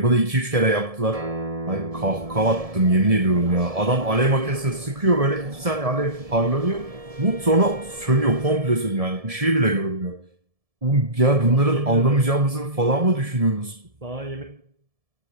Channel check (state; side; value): late; left; 1.7 ms